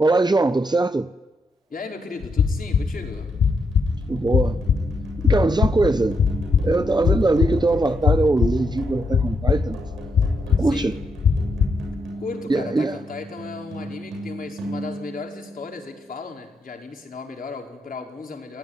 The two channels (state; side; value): normal; both; correlation 0.80